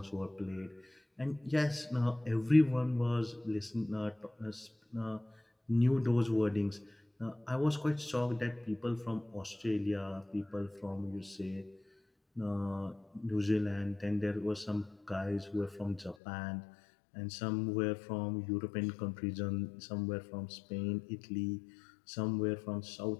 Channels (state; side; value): drops out; right; at 16.2 s